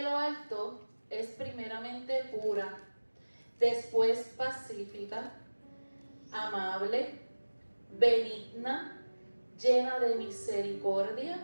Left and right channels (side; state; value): both; inverted; correlation -1.00